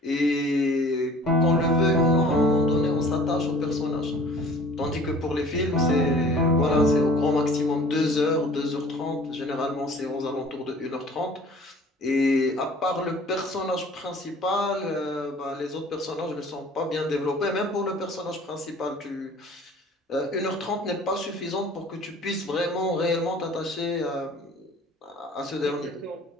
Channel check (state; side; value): normal; both; correlation 0.48